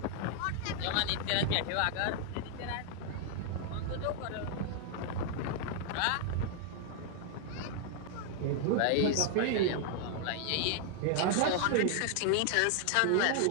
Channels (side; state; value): both; different; correlation 0.00